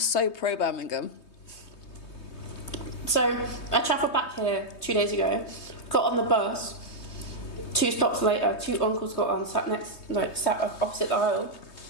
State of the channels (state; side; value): late; right; 3.2 ms